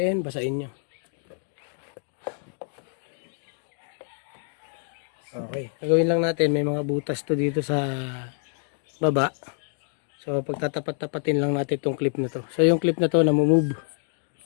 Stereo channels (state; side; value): silent; right; 60 dB below the other